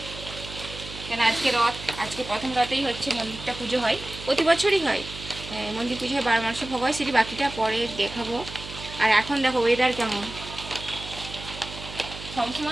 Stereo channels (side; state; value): right; noise; hum, 12 dB below the sound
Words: কেন আজকে রথ, আজকে প্রথম রথেই হচ্ছে মন্দিরটা পুজো হয়, প্রতি বছরই হয়। মন্দির পুজো হয় 12 মাসে ভোগ হয়, সেটি বাকিটা পরে দেখাবো। আর এখন দেখো ওয়েদার কেমন,